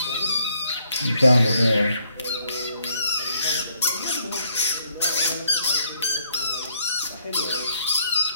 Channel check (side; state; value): both; inverted; correlation -0.71